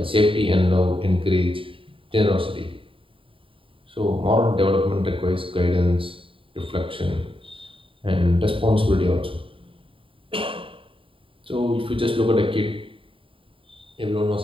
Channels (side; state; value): left; late; 0.25 ms